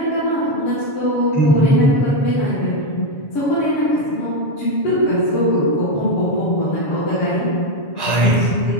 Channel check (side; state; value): right; late; 7.1 ms